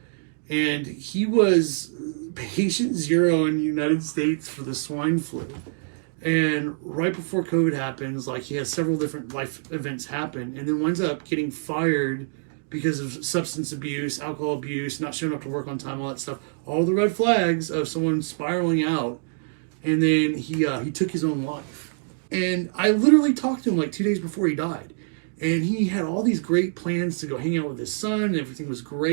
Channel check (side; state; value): left; silent; digital silence